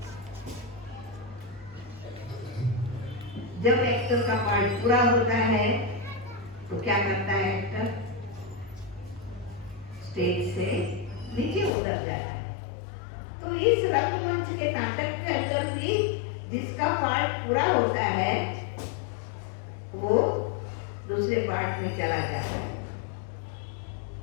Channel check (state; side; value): drops out; right; at 11.7 s